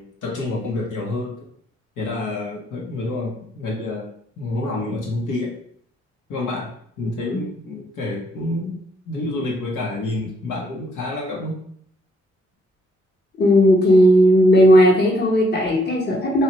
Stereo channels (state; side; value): normal; both; correlation 0.70